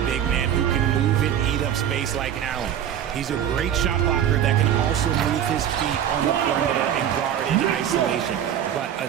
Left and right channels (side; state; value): left; quieter; 9.9 dB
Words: big man who can move and eat up space like Allen. He's a great shot blocker that can also also move his feet on the perimeter and guard in isolation. But a